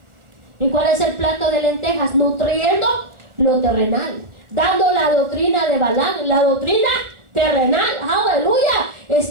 ¿Y cuál es el plato de lentejas? Nutriendo lo terrenal, dando la doctrina de Balaam, la doctrina terrenal. Aleluya.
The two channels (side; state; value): left; late; 1.4 ms